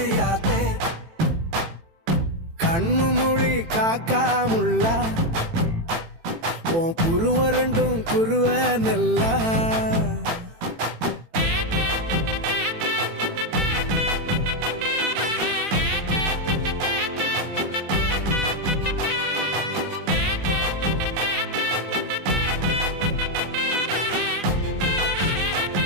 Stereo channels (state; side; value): late; left; 18 ms